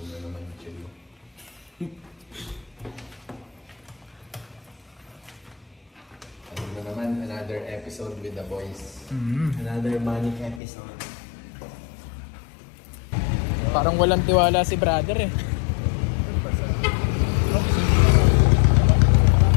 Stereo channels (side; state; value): right; drops out; at 10.6 s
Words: na naman yung chill. Ano na naman, another episode with the boys. Another manic episode. Parang walang tiwala si brother eh.